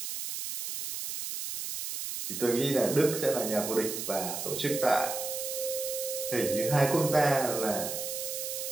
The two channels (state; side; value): noise; right; hiss, 5 dB below the sound